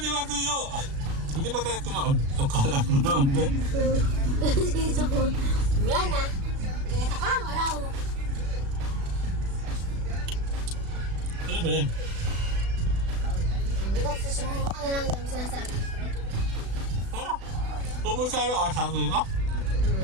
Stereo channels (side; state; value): left; late; 36 ms